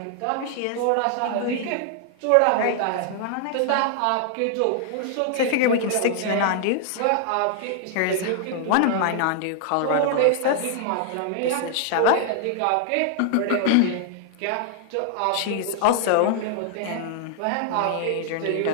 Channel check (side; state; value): both; different; correlation 0.00